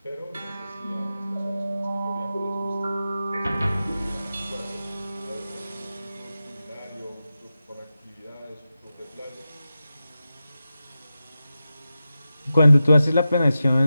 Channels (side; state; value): both; inverted; correlation -0.92